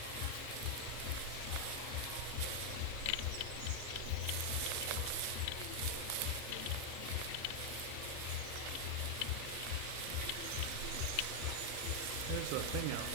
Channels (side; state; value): both; different; correlation 0.01